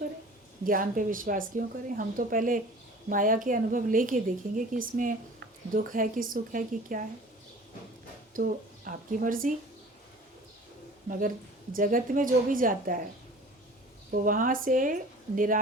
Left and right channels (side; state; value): both; normal; correlation 0.44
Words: ज्ञान पे विश्वास क्यों करें? हम तो पहले माया के अनुभव लेके देखेंगे कि इसमें दुख है कि सुख है कि क्या है। तो आपकी मर्जी, मगर जगत में जो भी जाता है वो वहाँ से